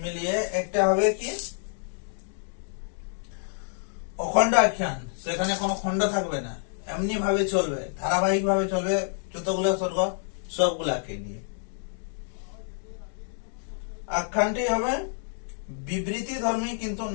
মিলিয়ে একটা হবে কি অখণ্ড আখ্যান। সেখানে কোনো খণ্ড থাকবে না, এমনি ভাবে চলবে, ধারাবাহিক ভাবে চলবে, যতগুলো স্বর্গ সবগুলাকে নিয়ে। আখ্যানটি হবে বিবৃতি ধর্মী কিন্তু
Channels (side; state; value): right; silent; digital silence